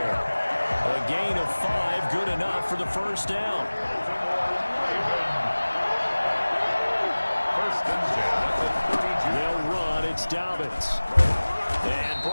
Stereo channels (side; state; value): both; inverted; correlation -1.00